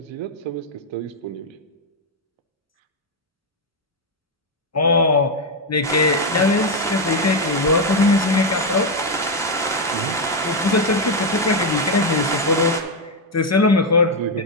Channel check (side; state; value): both; normal; correlation 0.04